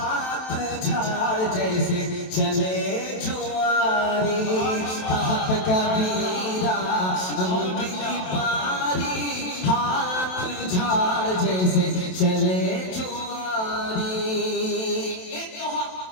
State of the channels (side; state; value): right; late; 27 ms